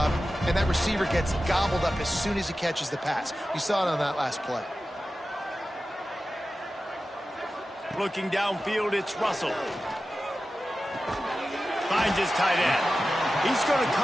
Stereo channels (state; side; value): normal; both; correlation 0.94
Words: and that receiver gets gobbled up as soon as he catches the pass. You saw it on that last play. Looking downfield, it's Russell. Finds his tight end. He's going to